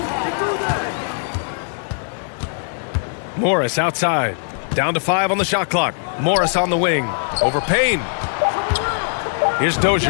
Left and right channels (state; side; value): silent; right; digital silence